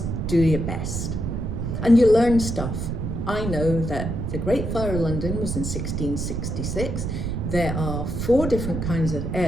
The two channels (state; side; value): noise; right; rumble, 3 dB below the sound